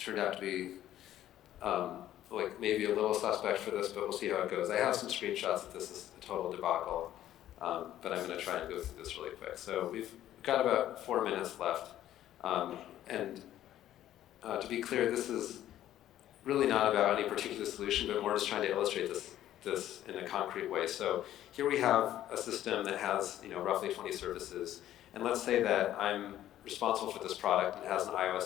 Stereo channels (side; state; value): right; quieter; 12.5 dB